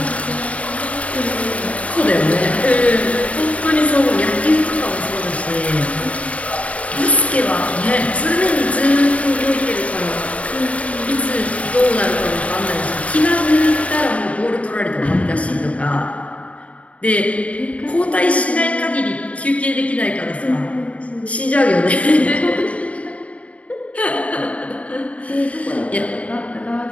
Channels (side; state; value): right; late; 0.066 ms